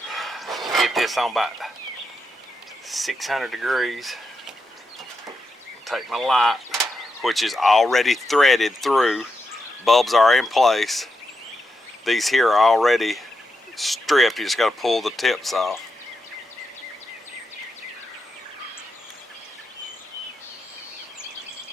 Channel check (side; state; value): both; normal; correlation 0.86